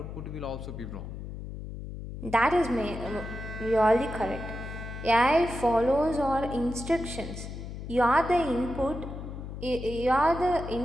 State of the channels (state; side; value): noise; left; hum, 9 dB below the sound